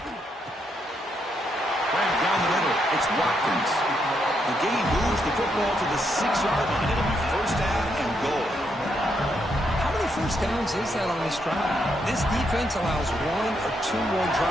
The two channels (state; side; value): normal; both; correlation 0.78